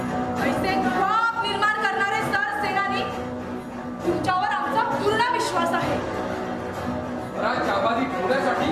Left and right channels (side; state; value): both; identical; correlation 1.00